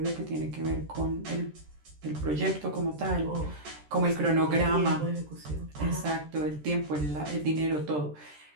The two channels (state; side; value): late; left; 13 ms